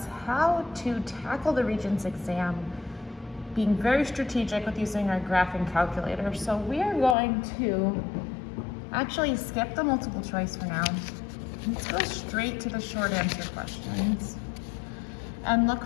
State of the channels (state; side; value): drops out; right; at 7.2 s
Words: how to tackle the Regents exam, being very strategic with using our graphing calculator. So we are going to actually skip the multiple choice for now. Let's go straight to the short answer questions and